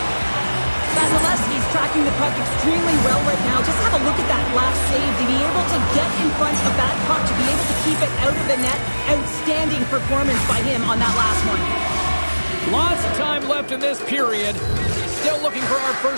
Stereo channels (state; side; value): inverted; both; correlation -1.00